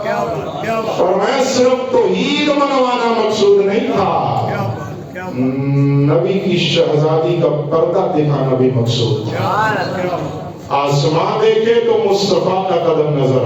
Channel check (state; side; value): identical; both; correlation 1.00